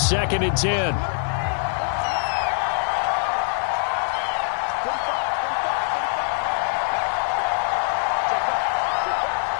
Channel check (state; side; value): silent; right; 59 dB below the other